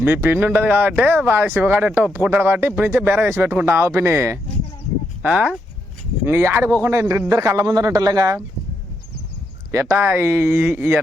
మీ పిన్ని ఉండదు కాబట్టి వాళ్ళ శివగాడు ఎట్టో ఒప్పుకుంటాడు కాబట్టి ఇప్పటి నుంచే బేర వేసి పెట్టుకుంటాం ఆ పిన్ని. ఇంక ఆడిపోకుండా ఇద్దరు కళ్ళ ముందర ఉంటారులేగా. ఎట్టా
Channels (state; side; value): normal; both; correlation 0.80